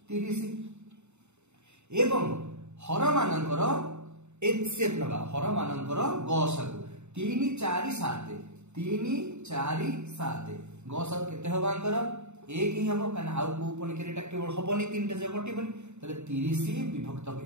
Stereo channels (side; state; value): left; late; 0.82 ms